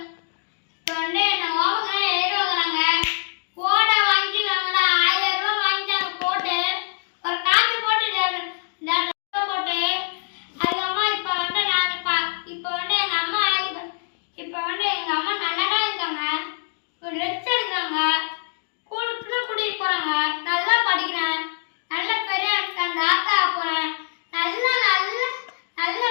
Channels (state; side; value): silent; right; digital silence